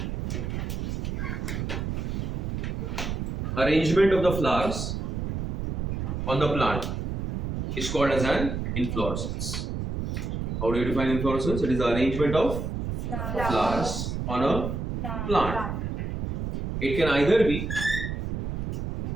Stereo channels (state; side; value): noise; right; rumble, 3 dB below the sound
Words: Arrangement of the flowers on the plant is called as an inflorescence. How do you define inflorescence? It is the arrangement of flowers on a plant. It can either be